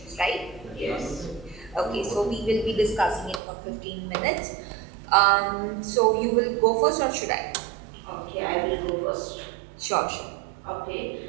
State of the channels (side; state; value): left; drops out; at 3.4 s